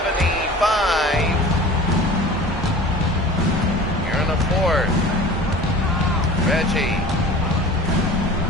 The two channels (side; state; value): both; normal; correlation 0.41